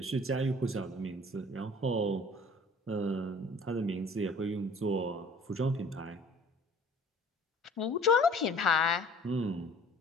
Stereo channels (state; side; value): normal; both; correlation 0.50